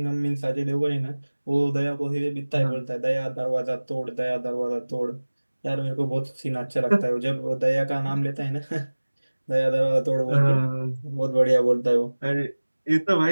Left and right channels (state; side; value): inverted; both; correlation -1.00